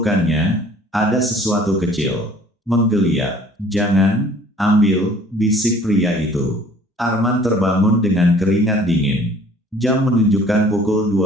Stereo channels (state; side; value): normal; both; correlation 0.53